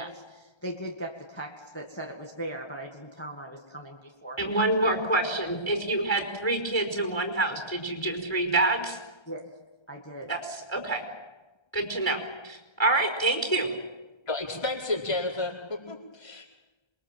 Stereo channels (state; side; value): late; right; 1.3 ms